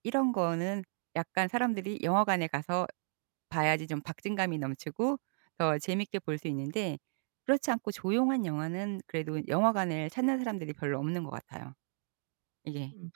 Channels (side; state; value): left; silent; digital silence